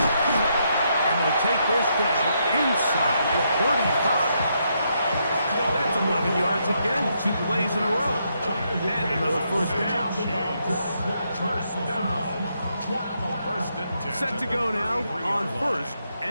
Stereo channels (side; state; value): both; inverted; correlation -0.78